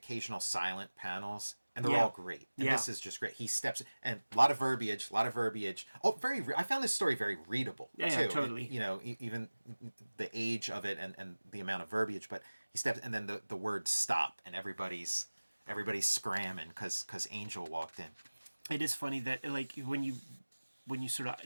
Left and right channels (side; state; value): both; inverted; correlation -1.00